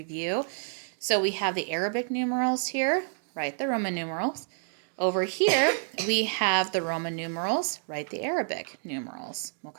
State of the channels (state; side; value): silent; left; digital silence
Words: So we have the Arabic numerals here, write the Roman numerals. Over here, we have the Roman numerals, write the Arabic numerals,